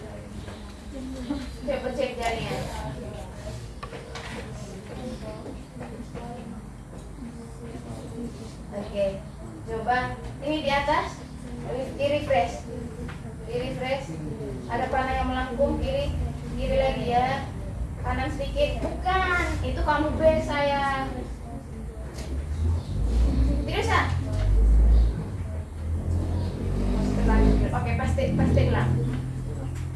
Coba cek jaringan. Oke, coba ini di atas, di refresh, ada panah yang melengkung kiri lagi ya, kanan sedikit, bukan, itu kamu base sayang, tidak usah. Oke, pasti ulang,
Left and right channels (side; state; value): both; identical; correlation 1.00